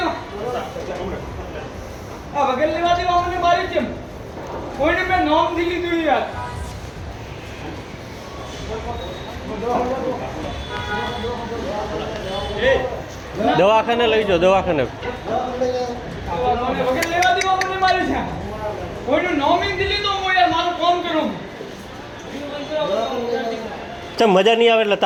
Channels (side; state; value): both; identical; correlation 1.00